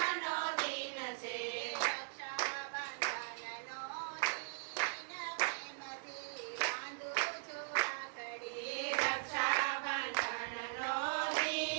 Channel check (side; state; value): left; silent; digital silence